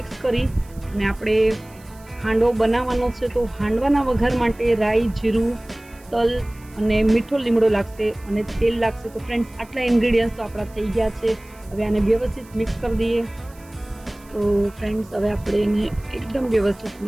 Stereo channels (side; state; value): right; noise; hiss, 26 dB below the sound